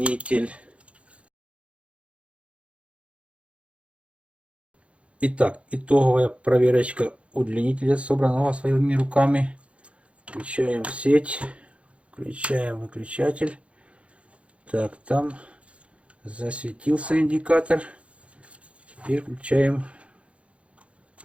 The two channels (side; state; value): left; late; 0.061 ms